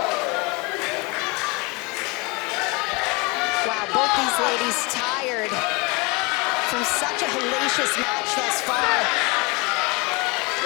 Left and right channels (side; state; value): right; quieter; 27.6 dB